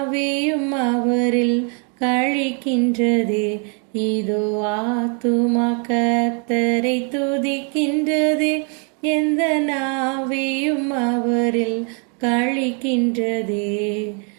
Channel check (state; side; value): quieter; left; 38.8 dB